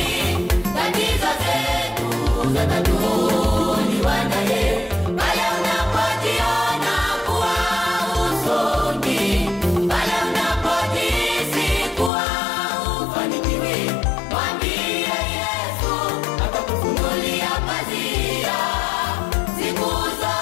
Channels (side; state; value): right; drops out; at 12.1 s